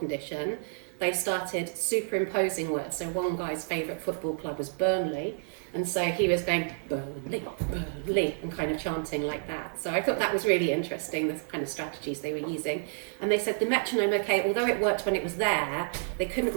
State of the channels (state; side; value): silent; left; digital silence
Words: they started superimposing words. So one guy's favourite football club was Burnley, and so he was going Burnley, Burnley, and kind of chanting like that. So I thought that was really interesting, the kind of strategies they were using. And they said the metronome, okay, although it worked when it was there, they couldn't